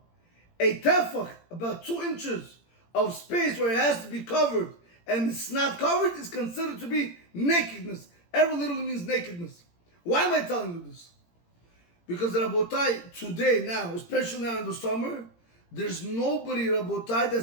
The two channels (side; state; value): right; late; 17 ms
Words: a tefach, about 2 inches of space where it has to be covered, and it's not covered, is considered to be nakedness. Erva literally means nakedness. Why am I telling you this? Because Rabotai, today, now, especially now in the summer, there's nobody, Rabotai,